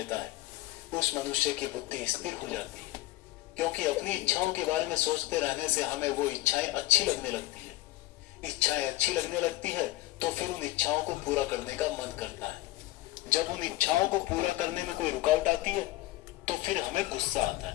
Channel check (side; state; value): right; quieter; 17.4 dB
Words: है, उस मनुष्य की बुद्धि स्थिर हो जाती है। क्योंकि अपनी इच्छाओं के बारे में सोचते रहने से हमें वो इच्छाएं अच्छी लगने लगती है। इच्छाएं अच्छी लगने लगती है तो फिर उन इच्छाओं को पूरा करने का मन करता है। जब उन इच्छाओं को पूरा करने में कोई रुकावट आती है तो फिर हमें गुस्सा आता